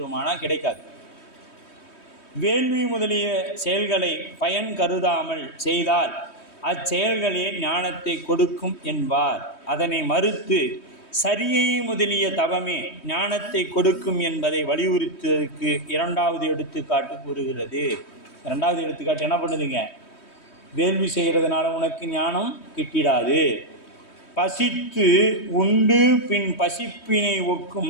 கிடைக்காது. வேள்வி முதலிய செயல்களை பயன் கருதாமல் செய்தால் அச்செயல்களே ஞானத்தை கொடுக்கும் என்பார். அதனை மறுத்து சரியை முதலிய தவமே ஞானத்தை கொடுக்கும் என்பதை வலியுறுத்துவதற்கு 2வது எடுத்துக்காட்டு கூறுகிறது. 2வது எடுத்துக்காட்டு என்ன பண்ணுதுங்க? வேள்வி செய்கிறதுனால உனக்கு ஞானம் கிட்டிடாது. பசித்து உண்டு பின் பசிப்பினை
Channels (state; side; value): late; right; 3.2 ms